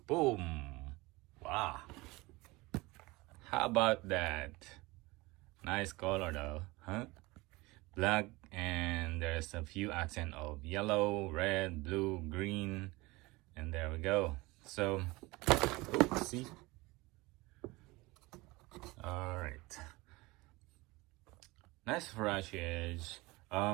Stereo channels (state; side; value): quieter; left; 22.3 dB